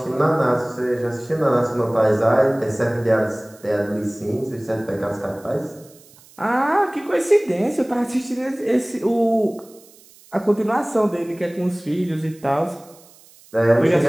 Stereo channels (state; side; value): noise; right; hiss, 26 dB below the sound